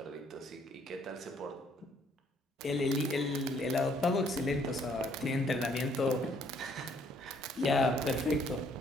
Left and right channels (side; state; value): both; normal; correlation 0.65